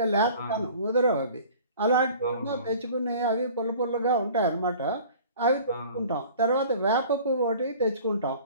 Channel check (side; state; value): both; inverted; correlation -0.46